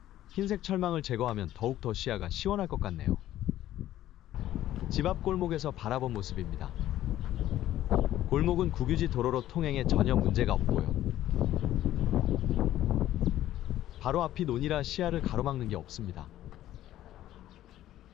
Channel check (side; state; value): right; quieter; 13.3 dB